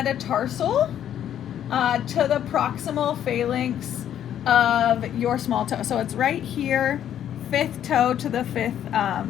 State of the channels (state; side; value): quieter; right; 10.3 dB